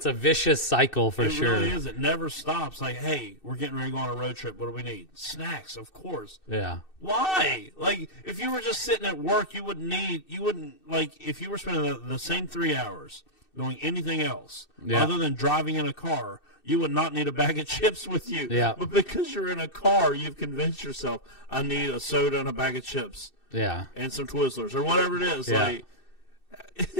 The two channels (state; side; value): late; right; 2.6 ms